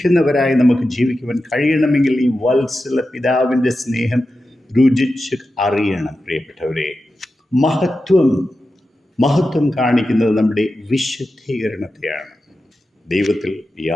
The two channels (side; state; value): both; normal; correlation 0.91